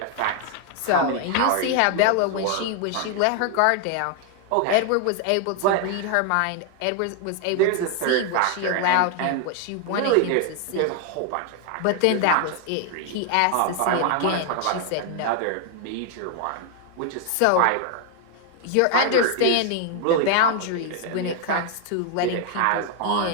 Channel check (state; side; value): different; both; correlation 0.00